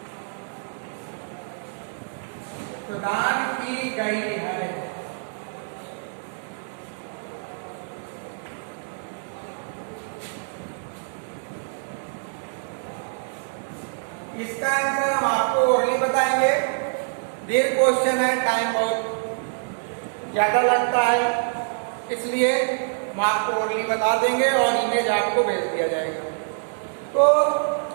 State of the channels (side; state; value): left; silent; digital silence